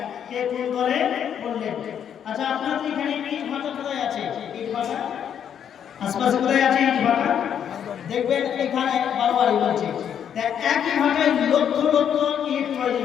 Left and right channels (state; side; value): quieter; right; 8.8 dB